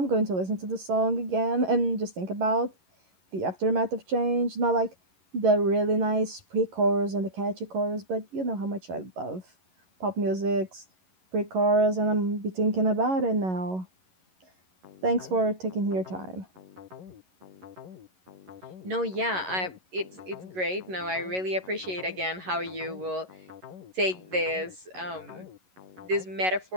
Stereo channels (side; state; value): left; late; 11 ms